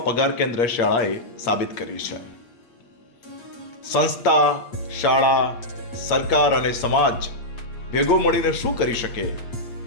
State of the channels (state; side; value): late; right; 8.6 ms